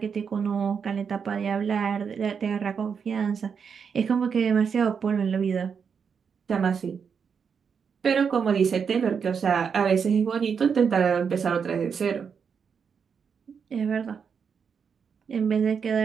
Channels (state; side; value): quieter; left; 6.5 dB